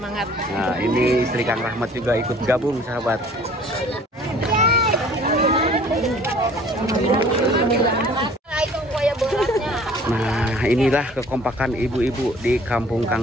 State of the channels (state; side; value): normal; both; correlation 0.52